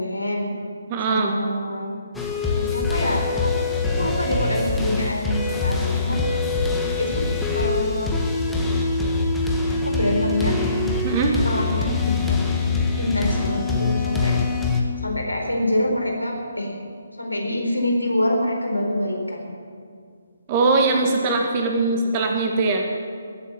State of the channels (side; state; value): both; inverted; correlation -0.61